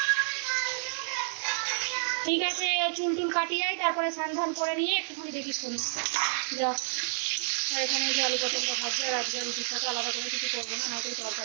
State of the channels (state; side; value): silent; left; digital silence